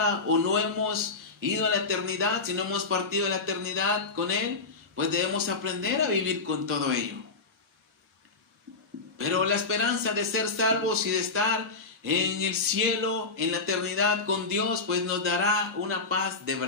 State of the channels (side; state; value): right; quieter; 4.0 dB